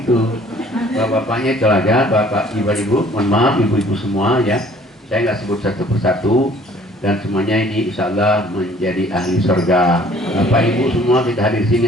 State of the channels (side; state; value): both; normal; correlation 0.55